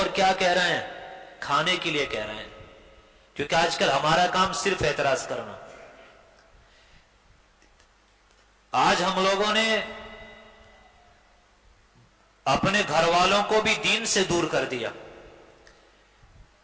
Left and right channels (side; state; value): both; identical; correlation 1.00